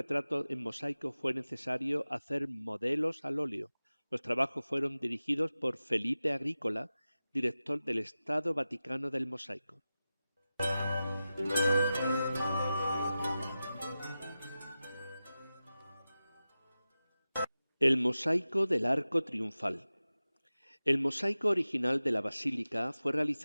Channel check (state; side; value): inverted; both; correlation -0.95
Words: en mosaico fue necesario hacer modelos al óleo. Los trabajos fueron dirigidos por Felipe Agrícola, director del Estado Vaticano del Mosaico. El mosaico del arco triunfal. El mosaico original de la basílica fue